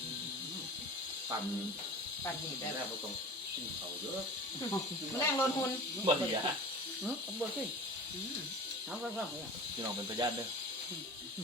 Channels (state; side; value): normal; both; correlation 0.37